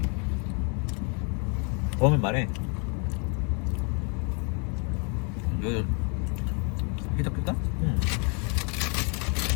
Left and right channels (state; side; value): quieter; right; 36.5 dB